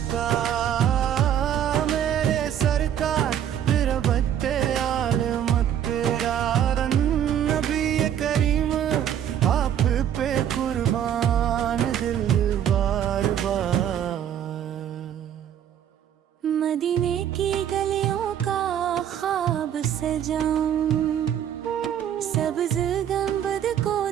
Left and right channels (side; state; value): left; quieter; 9.9 dB